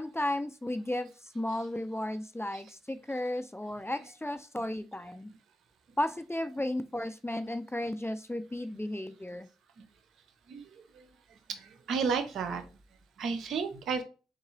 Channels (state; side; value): normal; both; correlation 0.82